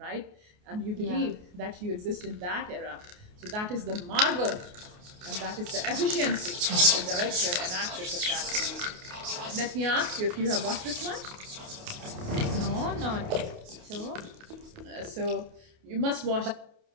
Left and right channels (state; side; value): late; left; 28 ms